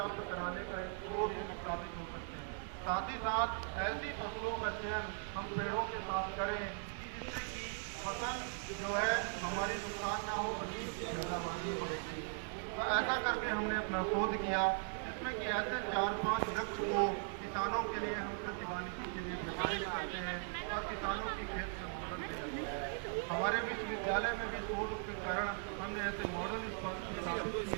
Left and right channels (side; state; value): left; silent; 52 dB below the other